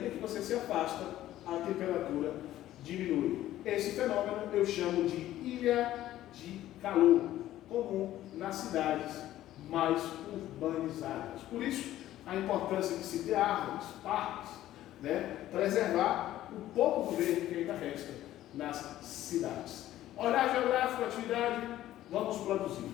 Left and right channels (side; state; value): right; quieter; 13.8 dB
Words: que você se afasta, a temperatura diminui. Esse fenômeno eu chamo de ilha de calor, comum nas cidades mais urbanizadas. Por isso, a importância de se ter árvores, parques, né, preservar o pouco do verde que ainda resta nas cidades. Olhar geográfico, atividade, vamos produzir.